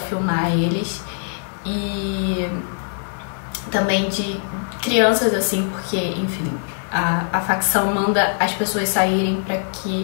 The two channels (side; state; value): right; silent; digital silence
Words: eles. E também de crianças assim, porque, enfim, a facção manda as pessoas saírem pra